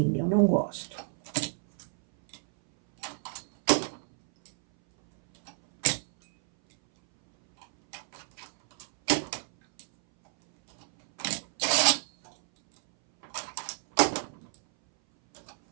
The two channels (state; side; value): silent; left; 59 dB below the other